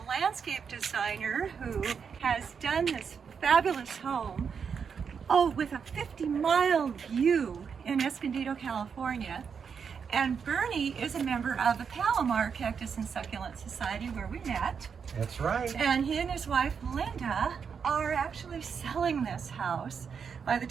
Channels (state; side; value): quieter; left; 6.5 dB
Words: landscape designer who has done this fabulous home, with a 50-mile view in Escondido, California. And Bernie is a member of the Palomar Cactus and Succulent Society where we met. That's right. And he and his wife, Linda, are actually selling this house. By the